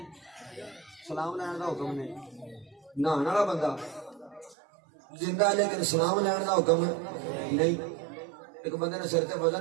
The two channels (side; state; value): left; drops out; at 4.5 s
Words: سلام لین دا حکم نہیں. نہان والا بندہ زندہ لیکن سلام لین کا حکم نہیں. ایک بندے نے سر تے